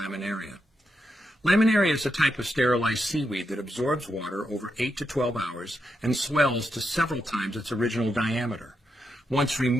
Laminaria is a type of sterilized seaweed that absorbs water over 8 to 12 hours and swells to several times its original diameter. Once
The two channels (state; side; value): normal; both; correlation 0.84